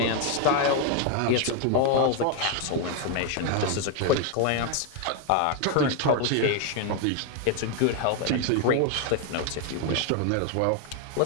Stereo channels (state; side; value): different; both; correlation 0.01